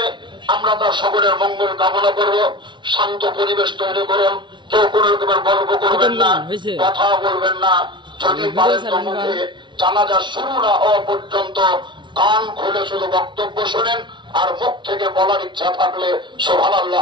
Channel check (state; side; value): late; left; 0.23 ms